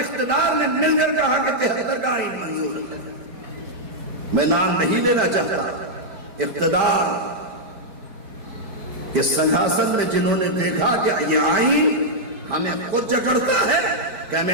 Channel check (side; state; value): left; late; 4.6 ms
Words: نے مل کر کہا کہ 73 کا آئین منظور ہے. میں نام نہیں لینا چاہتا. اقتدار کے سنگھاسن میں جنہوں نے دیکھا کہ یہ آئین ہمیں خود جکڑتا ہے کہ